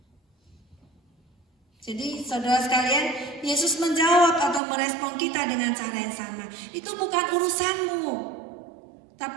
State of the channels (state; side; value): drops out; left; at 4.6 s